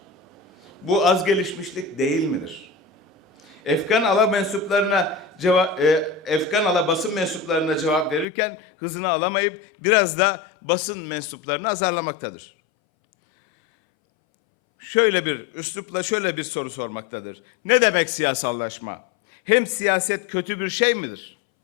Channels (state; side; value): drops out; right; at 8.2 s